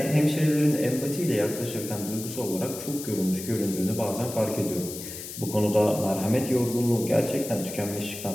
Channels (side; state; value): left; noise; hiss, 10 dB below the sound